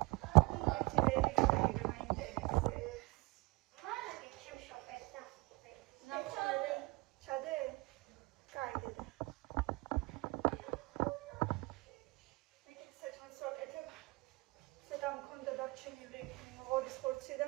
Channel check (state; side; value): quieter; left; 24.9 dB